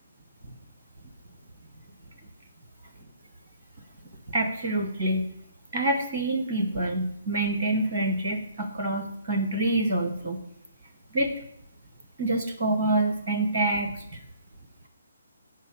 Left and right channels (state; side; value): inverted; both; correlation -0.53